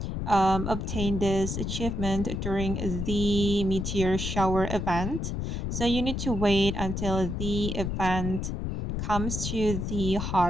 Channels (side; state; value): left; noise; rumble, 3 dB below the sound